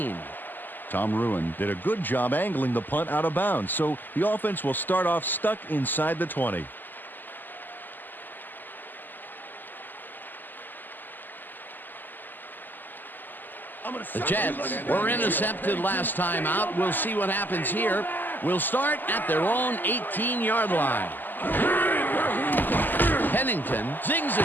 Tom Ruin did a good job angling the punt out of bounds, so the offense will start off stuck inside the 20. The Jets were intercepted last time out. We'll see what happens here. We'll start at their own 18-yard line. Pennington zings it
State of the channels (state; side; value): late; right; 0.089 ms